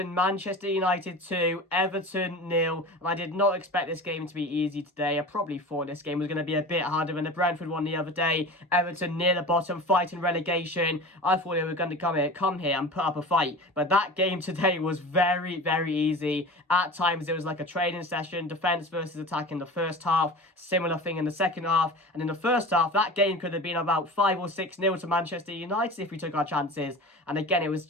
Manchester United 2, Everton 0. And I did not expect this game to be easy today. I probably thought this game was going to be a bit harder than the Brentford one the other day. Everton near the bottom, fighting relegation. I thought they were going to come here and put up a fight. But that game today was very, very easy. At times it was like a training session, defence versus attack in the first half. Similar thing in the second half. And in the first half, that game could have been about 5 or 6-0 to Manchester United if we took our chances. And again, it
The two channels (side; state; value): both; normal; correlation 0.34